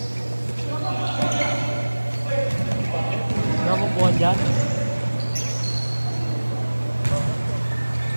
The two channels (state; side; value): inverted; both; correlation -1.00